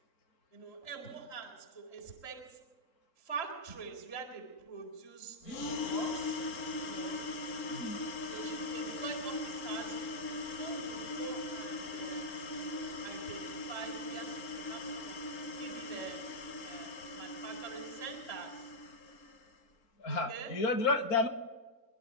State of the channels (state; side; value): late; right; 3.7 ms